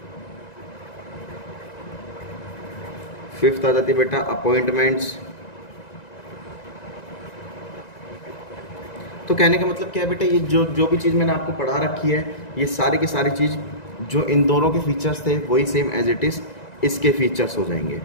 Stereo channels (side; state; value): right; late; 1.9 ms